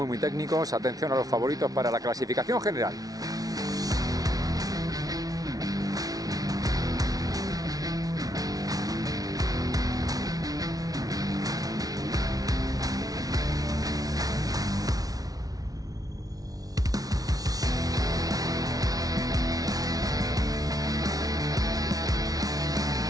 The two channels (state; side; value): late; left; 0.18 ms